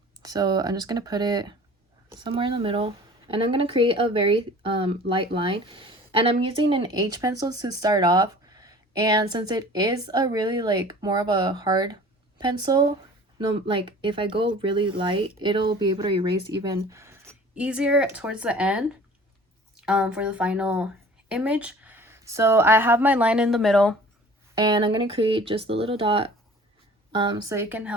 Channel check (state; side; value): normal; both; correlation 0.46